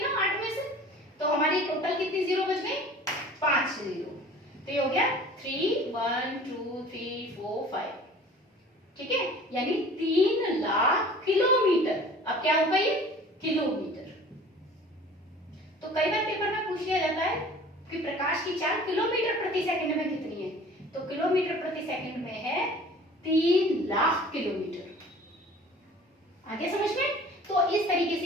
8 में से, तो हमारी टोटल कितनी जीरो बच गई? 5 जीरो। तो ये हो गया 3 1 2 3 4 5। ठीक है, यानी 3 लाख किलोमीटर। अब क्या होगा ये? किलोमीटर। तो कई बार पेपर में पूछ लिया जाता है कि प्रकाश की चाल किलोमीटर प्रति सेकंड में कितनी है, तो किलोमीटर प्रति सेकंड में है 3 लाख किलोमीटर। आगे समझ में? तो इस तरीके से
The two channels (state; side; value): normal; both; correlation 0.46